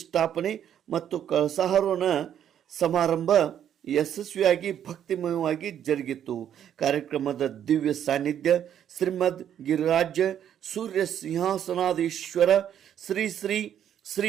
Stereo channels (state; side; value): quieter; left; 9.8 dB